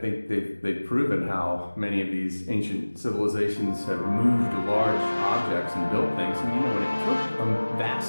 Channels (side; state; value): both; inverted; correlation -1.00